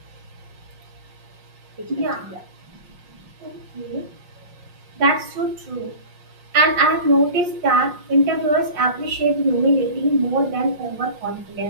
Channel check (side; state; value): left; late; 5.6 ms